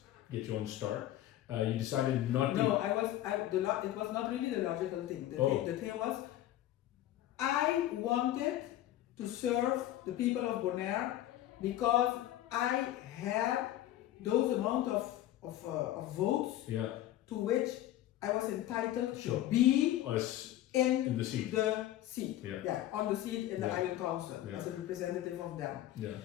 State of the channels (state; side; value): quieter; right; 13.6 dB